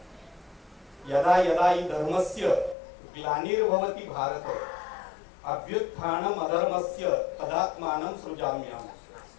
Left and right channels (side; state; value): right; drops out; at 2.8 s